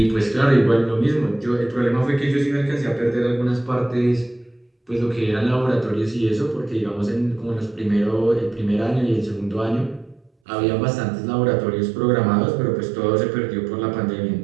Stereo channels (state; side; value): drops out; left; at 10.3 s